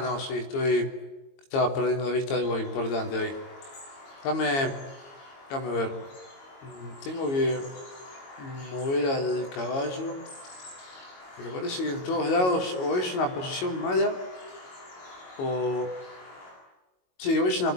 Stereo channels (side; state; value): right; late; 22 ms